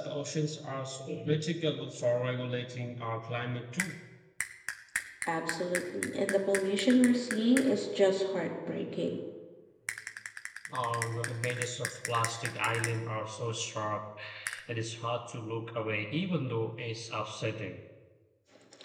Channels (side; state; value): both; identical; correlation 1.00